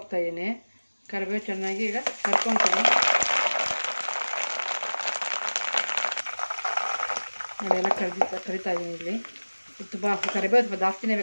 ಕರಿಬೇವು ಚೆನ್ನಾಗಿ ಈಗ ಕರ್ಕೊತೀನಿ ನೋಡಿ. ಎಲ್ಲ ಕರಿತಾ ಇದ್ದೀನಿ ಇಲ್ಲಿ. ತುಂಬ ಕರಿಬೇವು ಸ್ವಲ್ಪ ಜಾಸ್ತಿನೇ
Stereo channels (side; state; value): both; inverted; correlation -1.00